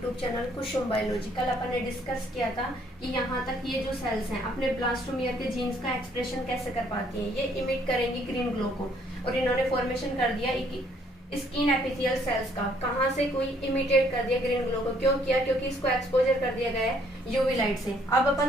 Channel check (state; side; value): normal; both; correlation 0.65